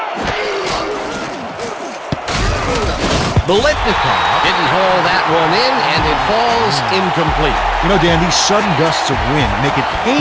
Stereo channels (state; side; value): identical; both; correlation 1.00